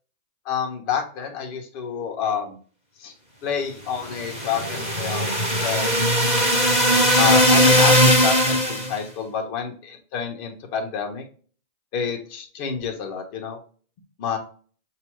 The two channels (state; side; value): late; right; 2.0 ms